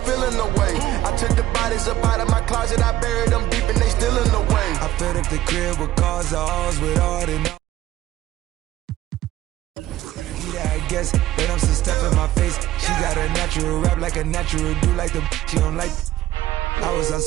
feeling the way. I took the bodies up out of my closet. I buried them deep and they still in the way. I filled up the crib with cars, the halls with all the I guess, but I'm some stuff in my face. She got a natural rap like a natural do like the she don't like. I was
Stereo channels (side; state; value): left; quieter; 14.5 dB